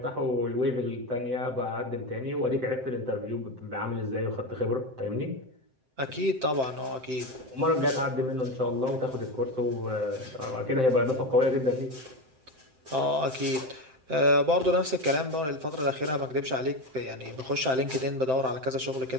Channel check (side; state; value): left; late; 7.7 ms